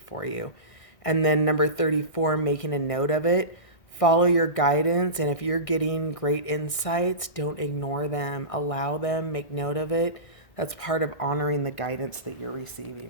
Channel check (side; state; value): right; late; 1.6 ms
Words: for you. And then number 34, making a note of it. Follow your guidance, and if you're getting great insights, don't ignore them. Allow them, make note of it. That's part of honoring the guidance that you're